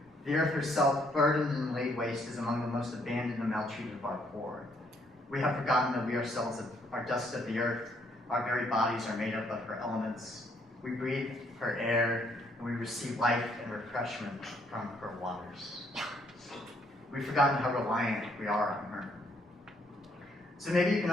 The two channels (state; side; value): normal; both; correlation 0.69